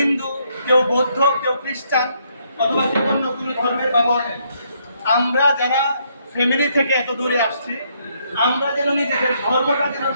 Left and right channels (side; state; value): both; inverted; correlation -0.72